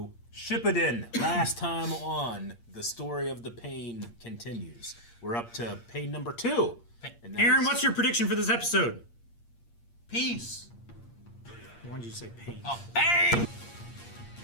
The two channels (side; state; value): right; late; 8.6 ms